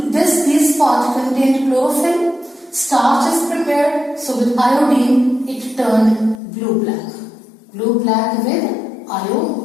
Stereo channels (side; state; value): right; drops out; at 6.4 s